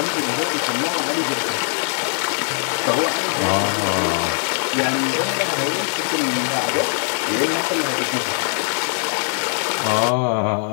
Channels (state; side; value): silent; right; digital silence